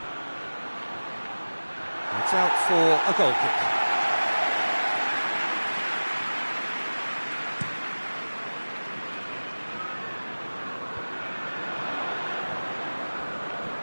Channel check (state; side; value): inverted; both; correlation -1.00